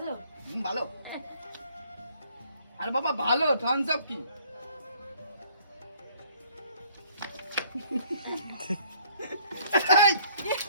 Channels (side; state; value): both; inverted; correlation -0.59